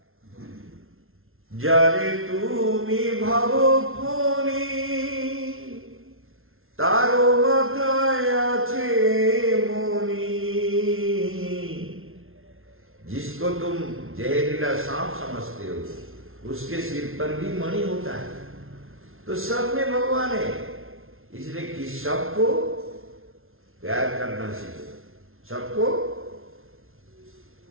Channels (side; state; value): left; late; 0.61 ms